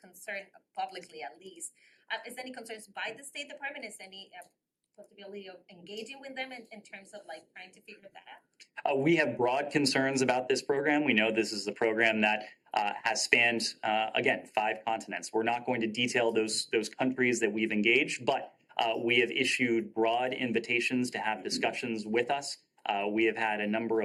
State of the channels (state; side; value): identical; both; correlation 1.00